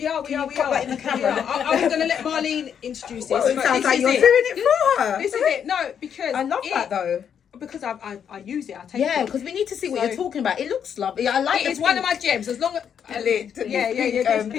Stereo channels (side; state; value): right; quieter; 8.1 dB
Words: are. Put that in the camera. I'm going to let Marleen introduce this. Well, it but sounds this like is you're it. doing it for her. This is it. No, because I love that though. Because I use it. I take Yeah, it. because we need to see what So- you're talking about. It looks lovely. I like It's one of my gems. As long as the